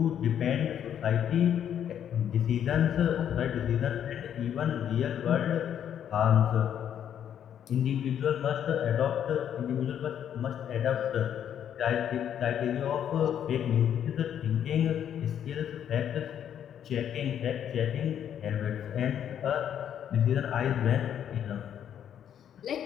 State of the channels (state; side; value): quieter; right; 9.4 dB